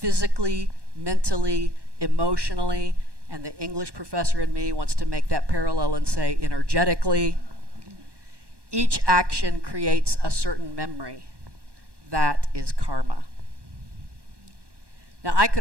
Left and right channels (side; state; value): left; late; 1.1 ms